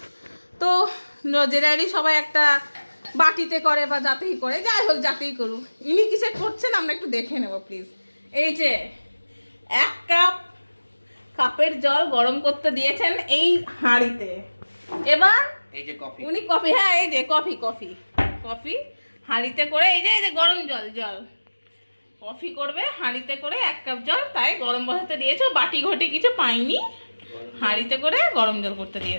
তো জেনারেলি সবাই একটা বাটিতে করে বা যাতেই করে, যাই হোক যাতেই করুক, ইনি কিসে করছেন আমরা একটু দেখে নেব প্লিজ। এই যে 1 কাপ কাপের জল গরম করতে দিয়েছেন এই হাঁড়িতে। এবার এই যে কফি, উনি কফি, হ্যাঁ এই যে কফি কফি কফি হাঁড়িতে করে, এই যে গরম জল কফি করবে হাঁড়িতে করে 1 কাপ জল, তাই গরম বসাতে দিয়েছে। বাটি ঘটি কিছু পাইনি, হাঁড়িতে করে গরম জল করতে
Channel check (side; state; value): both; inverted; correlation -1.00